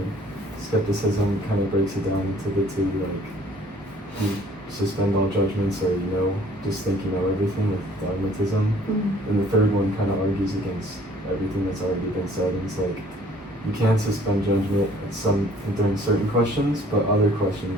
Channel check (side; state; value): both; normal; correlation 0.56